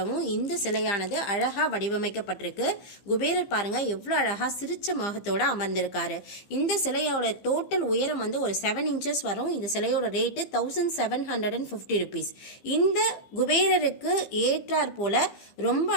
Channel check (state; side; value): late; right; 15 ms